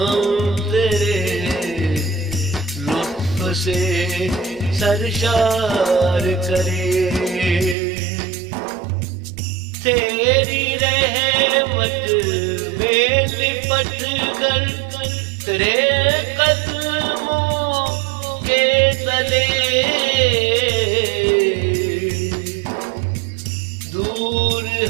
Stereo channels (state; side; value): drops out; left; at 7.8 s